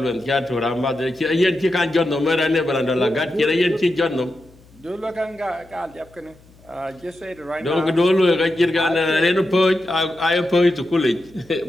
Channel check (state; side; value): noise; left; hum, 27 dB below the sound